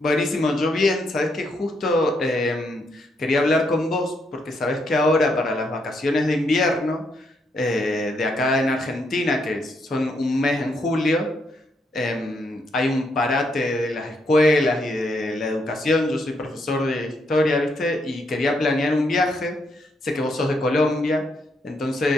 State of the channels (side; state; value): both; normal; correlation 0.77